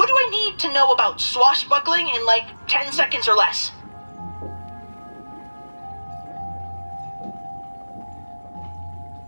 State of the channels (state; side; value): inverted; both; correlation -1.00